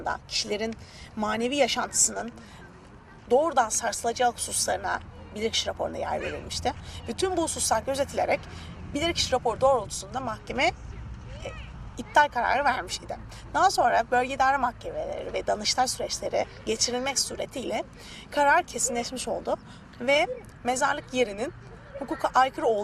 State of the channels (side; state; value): both; identical; correlation 1.00